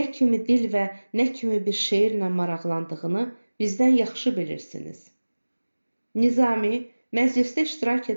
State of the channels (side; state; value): both; inverted; correlation -1.00